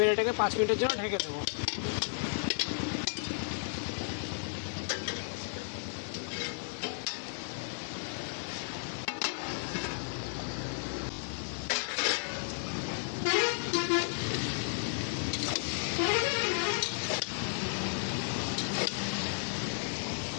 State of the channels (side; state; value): right; silent; 55 dB below the other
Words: এটাকে 5 মিনিটের জন্য ঢেকে দেবো।